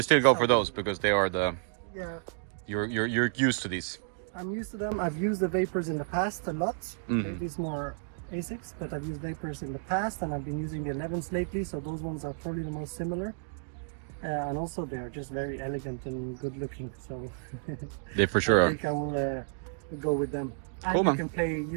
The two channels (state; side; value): silent; left; digital silence